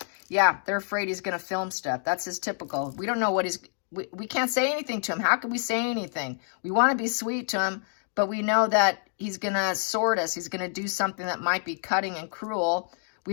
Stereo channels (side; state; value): right; silent; 60 dB below the other